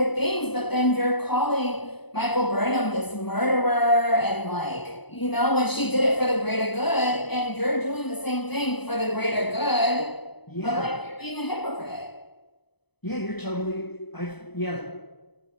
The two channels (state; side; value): late; right; 0.99 ms